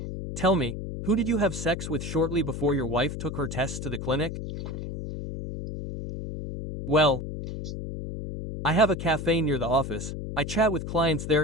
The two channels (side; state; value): left; noise; hum, 7 dB below the sound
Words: Tell me, who did you have sex with shortly before your wife took her tests to the clinic? Well, I have a cafe near the office. I chat with clients